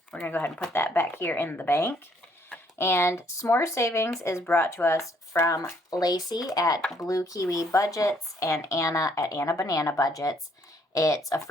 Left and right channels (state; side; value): normal; both; correlation 0.66